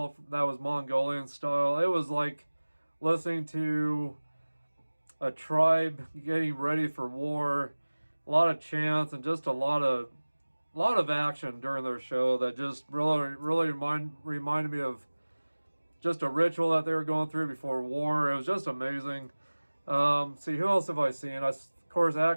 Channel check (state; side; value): inverted; both; correlation -1.00